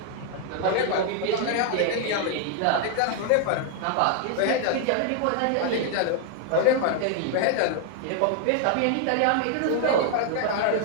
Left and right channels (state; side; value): different; both; correlation 0.00